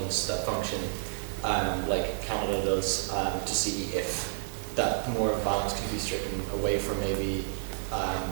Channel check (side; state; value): left; silent; 58 dB below the other